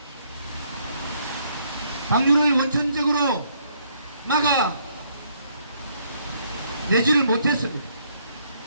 방류를 원천적으로 막아내지를 못했습니다.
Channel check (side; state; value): both; inverted; correlation -0.69